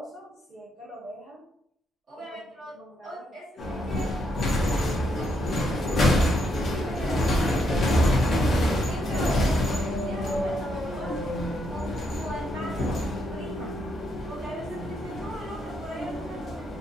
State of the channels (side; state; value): both; normal; correlation 0.78